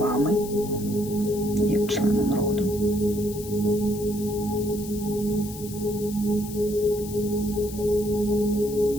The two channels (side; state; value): left; noise; hiss, 14 dB below the sound